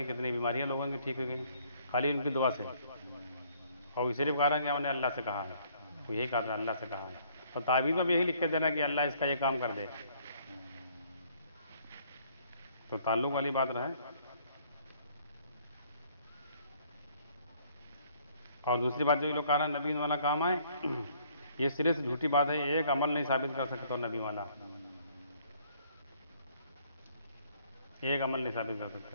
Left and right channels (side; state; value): both; inverted; correlation -0.62